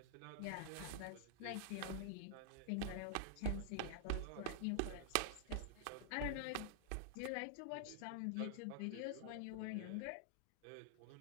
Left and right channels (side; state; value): both; different; correlation -0.01